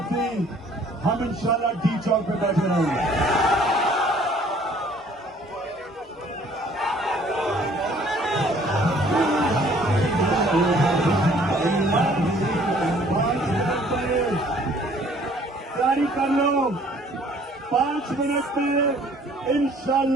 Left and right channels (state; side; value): normal; both; correlation 0.57